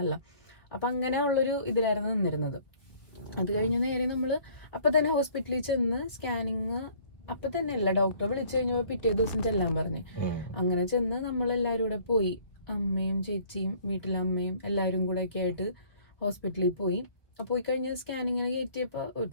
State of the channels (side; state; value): right; late; 1.5 ms